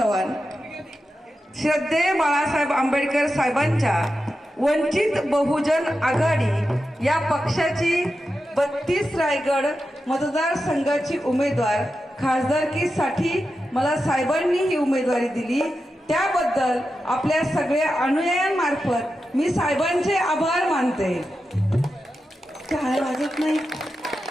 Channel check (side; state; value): both; normal; correlation 0.90